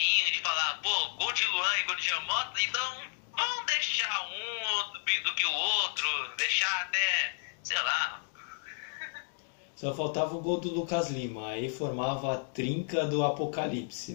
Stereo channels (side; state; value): right; silent; digital silence